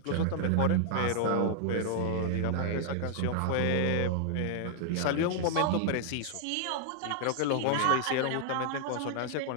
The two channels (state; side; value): different; both; correlation -0.01